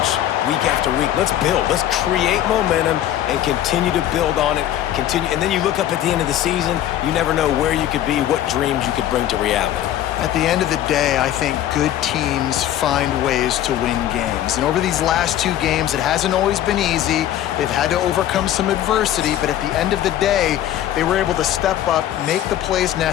week after week. Let's build. Let's create momentum and continue to build on it. And then you look up at the end of the season, you never know where you could be, what dreams you could bring to reality. At the end of the day, I think good teams find ways to win games. And over these last 2 games, it hasn't always been easy. They've had to overcome some adversity, but at the end of the day, they were able to step up, make the plays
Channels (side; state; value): right; quieter; 12.2 dB